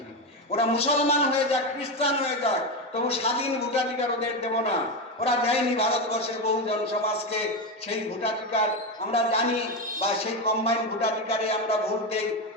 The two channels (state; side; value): normal; both; correlation 0.13